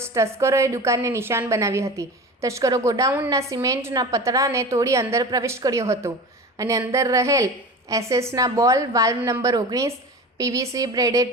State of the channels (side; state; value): both; normal; correlation 0.33